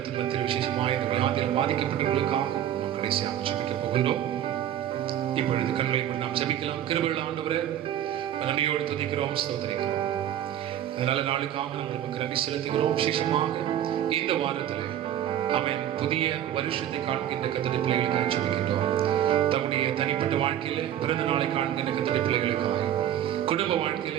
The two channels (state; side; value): quieter; left; 11.1 dB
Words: மத்தியில் விசேஷமாக இந்த வியாதியில் பாதிக்கப்பட்டவர்களுக்காக நாம் கடைசியாக ஜெபிக்க போகின்றோம். இப்பொழுது கண்களை கூட நாம் ஜெபிக்கலாம். கிருபையுள்ள ஆண்டவரே, நன்றியோடு துதிக்கிறோம், ஸ்தோத்திரிக்கிறோம். அதனால நாளுக்காக நாங்கள் நமக்கு நன்றி செலுத்துகிறோம். விசேஷமாக இந்த வாரத்தில் அவன் புதிய வருஷத்தை காண்கின்ற கர்த்தருடைய பிள்ளைகளுக்காக ஜெபிக்கின்றோம். தம்முடைய தனிப்பட்ட வாழ்க்கையில பிறந்த நாளை காண்கின்ற கர்த்தருடைய பிள்ளைகளுக்காக, குடும்ப வாழ்க்கையில